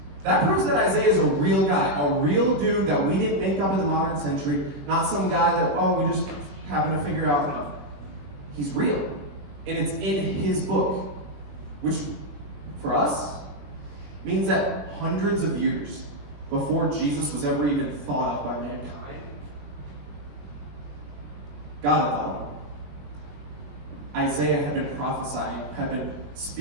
that proves that Isaiah is a real guy, a real dude that we didn't make up in the modern century, not some guy that, we just happened to figure out. No. He's real. And it's in his book, which, for us, means that hundreds of years before Jesus was ever even thought of by mankind, God had thought of him. Isaiah had been prophesying, had been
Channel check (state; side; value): late; left; 21 ms